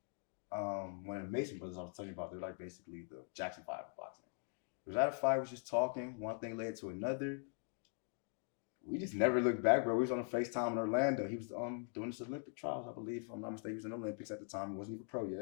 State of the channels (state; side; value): silent; right; 50 dB below the other